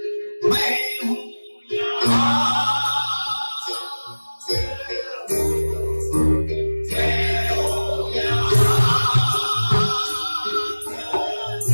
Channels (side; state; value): both; inverted; correlation -1.00